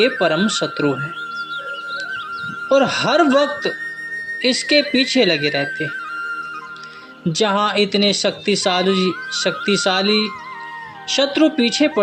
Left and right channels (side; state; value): both; identical; correlation 1.00